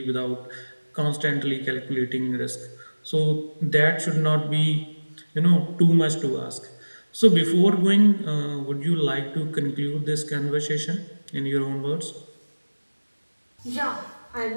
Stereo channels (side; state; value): both; inverted; correlation -1.00